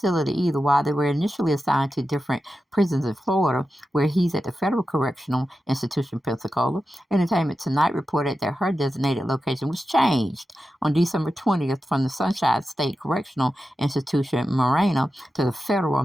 either. While they were initially assigned to different prisons in Florida, where he's at the Federal Correctional Institution, Pensacola, Entertainment Tonight reported that her designated location was changed on December 20th from the Sunshine State Correctional Institution, Marina, to the Federal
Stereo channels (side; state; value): both; normal; correlation 0.92